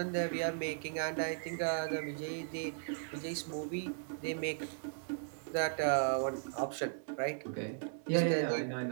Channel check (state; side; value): silent; left; digital silence